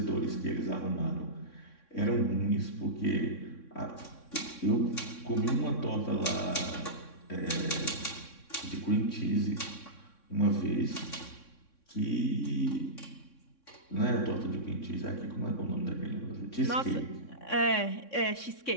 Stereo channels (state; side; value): late; right; 3.6 ms